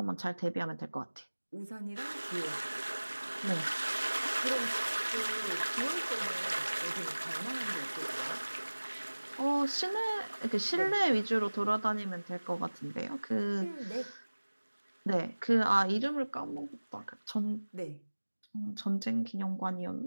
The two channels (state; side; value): inverted; both; correlation -1.00